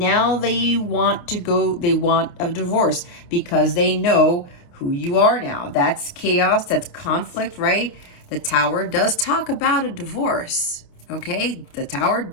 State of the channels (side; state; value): right; late; 29 ms